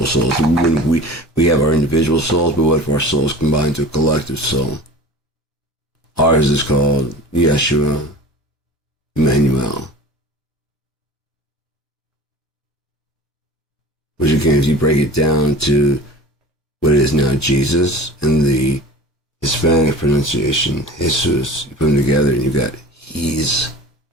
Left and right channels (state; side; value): normal; both; correlation 0.39